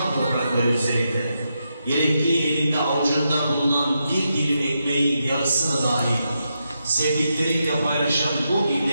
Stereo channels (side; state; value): both; inverted; correlation -0.84